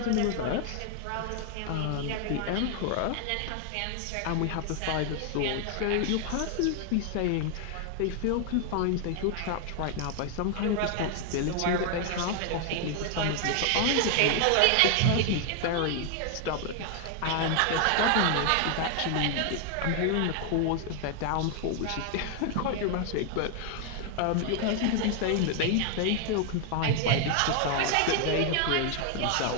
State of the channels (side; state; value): both; different; correlation 0.00